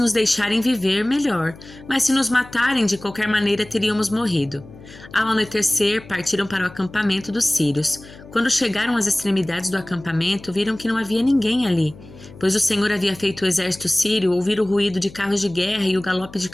deixarem viver, melhor, mas se nos matarem, de qualquer maneira teríamos morrido. Ao anoitecer, partiram para o acampamento dos sírios. Quando chegaram às extremidades do acampamento, viram que não havia ninguém ali, pois o Senhor havia feito o exército sírio ouvir o ruído de carros de guerra e o galope de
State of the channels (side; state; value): left; noise; hum, 19 dB below the sound